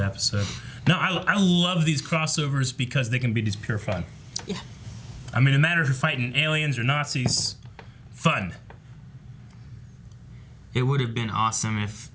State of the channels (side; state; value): both; identical; correlation 1.00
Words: episode. No, I love these crossovers because they can be just pure fun. Yeah. I mean, no matter if you're fighting aliens or Nazis, fun. It would have been awesome if